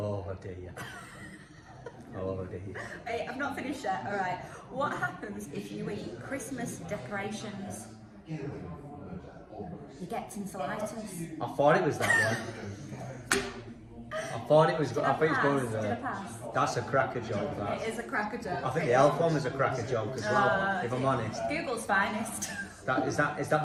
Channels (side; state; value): both; identical; correlation 1.00